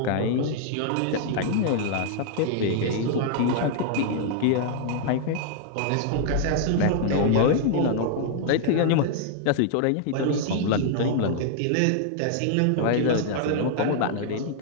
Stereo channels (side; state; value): both; different; correlation 0.00